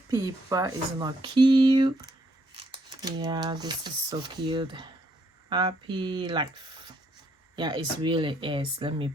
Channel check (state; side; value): normal; both; correlation 0.72